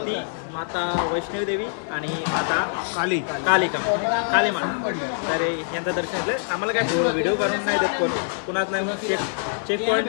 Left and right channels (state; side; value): silent; right; digital silence